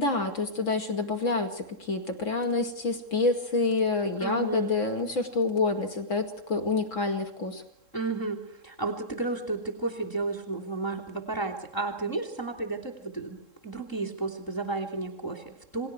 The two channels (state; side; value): late; right; 3.7 ms